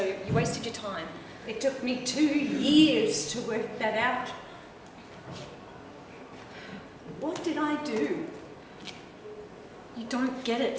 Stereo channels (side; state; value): both; identical; correlation 1.00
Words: you wasted your time. It took me 2 years to work that out. What did I do? You don't get